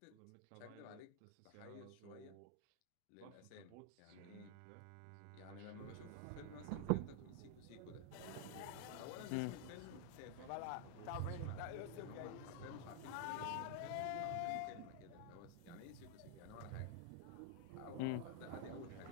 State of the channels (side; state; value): both; different; correlation 0.00